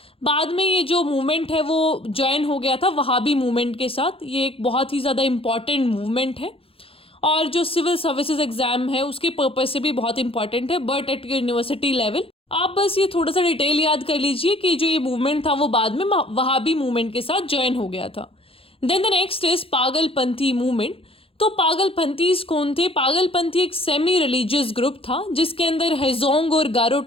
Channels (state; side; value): late; right; 0.27 ms